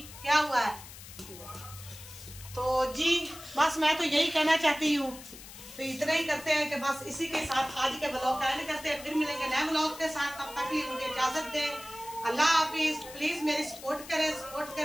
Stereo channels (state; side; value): noise; left; hiss, 15 dB below the sound